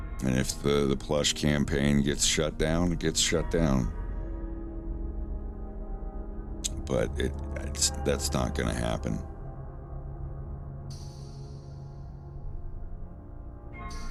And if the plush campaign gets shut down, it gets shut down. But that's not going to happen.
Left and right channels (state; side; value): identical; both; correlation 1.00